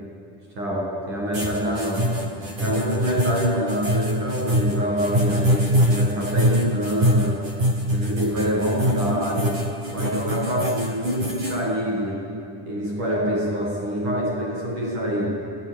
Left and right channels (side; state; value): left; late; 10 ms